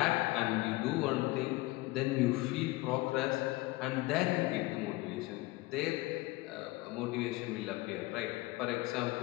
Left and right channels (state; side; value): quieter; right; 20.8 dB